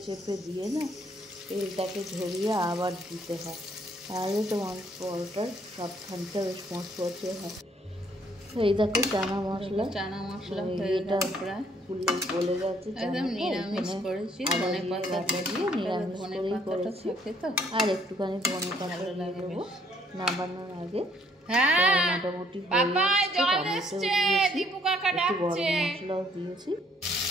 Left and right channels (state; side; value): normal; both; correlation 0.65